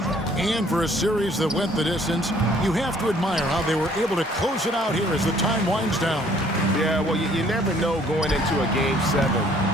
And for a series that went the distance, you have to admire how they were able to close it out here as the time winds down. Yeah, well, you never know going into a Game 7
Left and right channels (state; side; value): normal; both; correlation 0.59